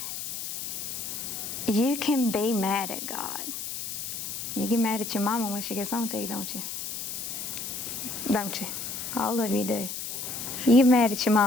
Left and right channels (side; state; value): left; noise; hiss, 6 dB below the sound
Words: You can be mad at God. You get mad at your mama when she gets on to you, don't you? Don't you? All of you do. You get mad at your